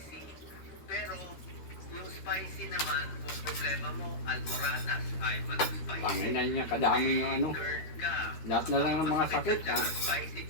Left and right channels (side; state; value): right; late; 13 ms